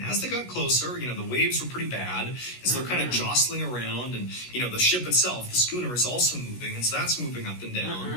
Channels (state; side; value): late; right; 16 ms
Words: as they got closer, the waves were pretty bad, and so they're kind of jostling around, and, the ship itself, the schooner, is also moving, and so that's moving up and